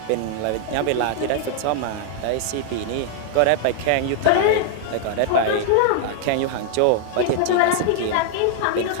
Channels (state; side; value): different; both; correlation 0.00